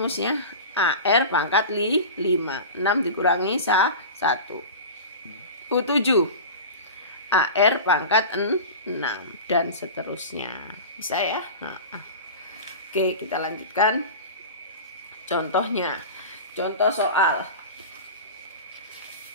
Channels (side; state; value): both; inverted; correlation -0.31